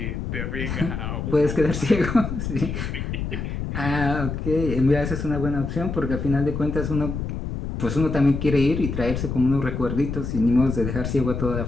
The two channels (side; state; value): left; noise; rumble, 4 dB below the sound